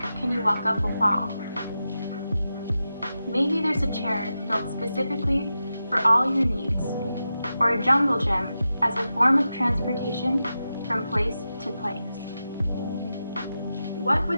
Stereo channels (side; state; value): both; inverted; correlation -0.91